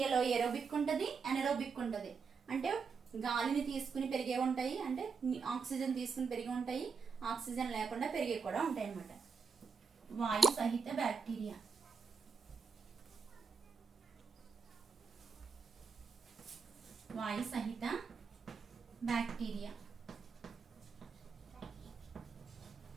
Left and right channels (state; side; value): quieter; left; 5.4 dB